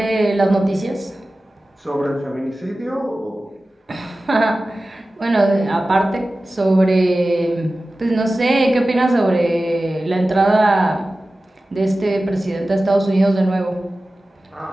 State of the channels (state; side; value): normal; both; correlation 0.96